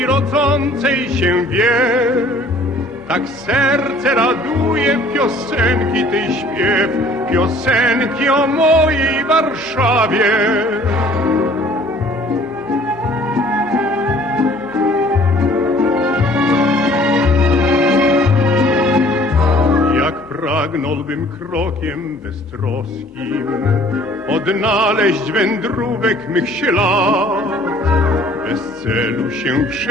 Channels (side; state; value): left; noise; hum, 29 dB below the sound